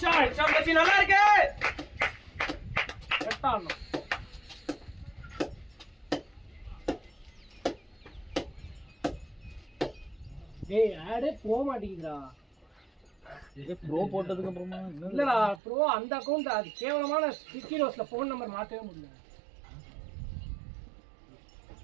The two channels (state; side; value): drops out; left; at 15.6 s